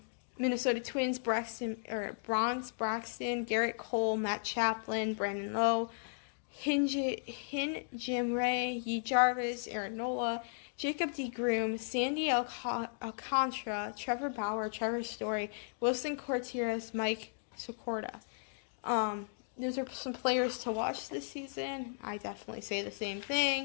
Minnesota Twins, Bronze Braxton, Garrett Cole, Matt Chaplin, Brandon Lowe, Jim Ray, Yi Jarvis, Aaron Nola, Jacob DeGrom, Sandy Alcantara, Trevor Bauer, Trevor Story, Wilson Contreras, Mike Socorda. Those are some players to watch this season. I definitely say the same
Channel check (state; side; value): silent; right; digital silence